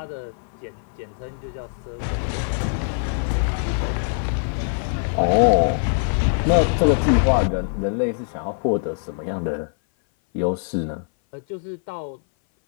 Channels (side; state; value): right; silent; 59 dB below the other